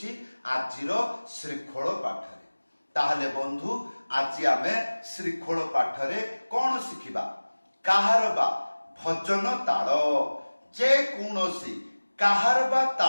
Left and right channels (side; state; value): both; inverted; correlation -1.00